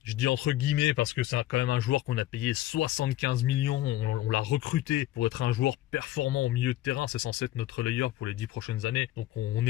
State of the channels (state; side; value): quieter; right; 14.9 dB